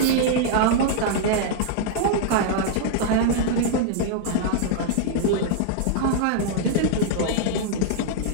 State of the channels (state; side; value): different; both; correlation -0.01